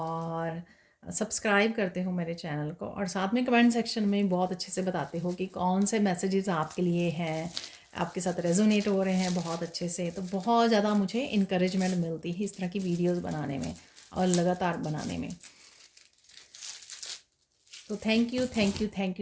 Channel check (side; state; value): both; identical; correlation 1.00